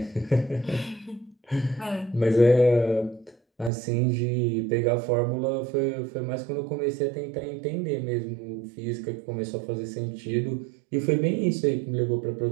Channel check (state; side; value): drops out; left; at 3.7 s